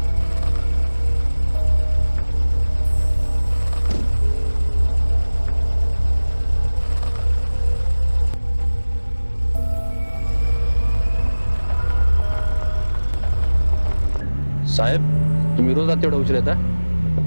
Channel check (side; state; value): both; inverted; correlation -1.00